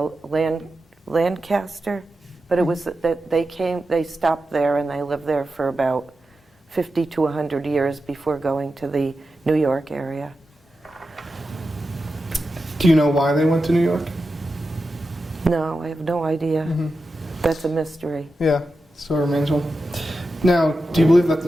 Lancaster, but it was that they stopped there and they lived there for about 50 to 100 years before going to the New York area. Do you know why they went to New York? No, I have no idea. Mm-hmm. That's a mystery. Yeah, still remains one. Now, do you believe that the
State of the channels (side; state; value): both; normal; correlation 0.91